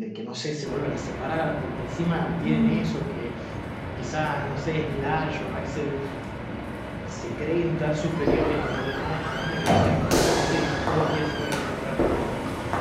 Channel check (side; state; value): both; identical; correlation 1.00